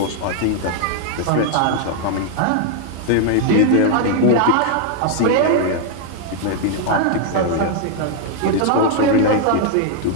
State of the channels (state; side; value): different; both; correlation 0.00